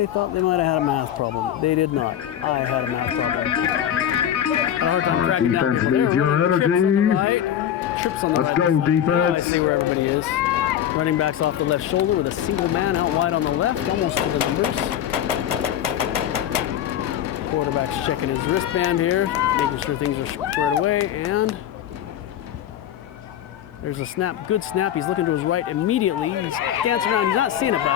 thought they might have had a math problem. They did not. I had a math problem. Had a hard time tracking down people. They were running trips on the right. Trips on the right. Let's go, defense. Now I see where everybody is. Running backs off the left shoulder with a single man out wide on the left, almost to the numbers. Quarterback's checking his wristband here, making sure things are squared away, and there's a snap, good snap. He's looking to his right immediately. He's dancing around. He's not seeing it, but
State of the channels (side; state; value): right; quieter; 10.5 dB